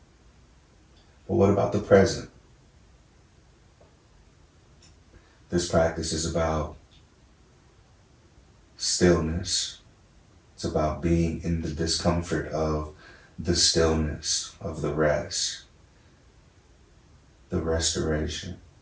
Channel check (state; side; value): identical; both; correlation 1.00